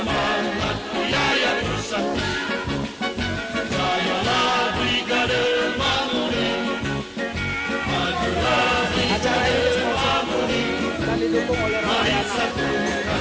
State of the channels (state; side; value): identical; both; correlation 1.00